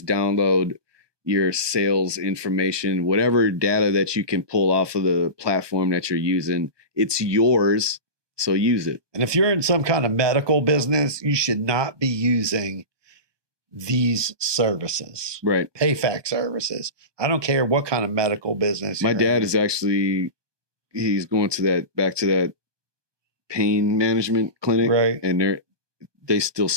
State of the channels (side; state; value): left; late; 1.2 ms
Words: your sales information, whatever data that you can pull off of the platform that you're using. It's yours, so use it. And if you're in some kind of medical business, you should not be using these services, right? PayFac services. I don't care what kind of medical business. My dad is actually, he's going back to that pain management clinic, right? And they still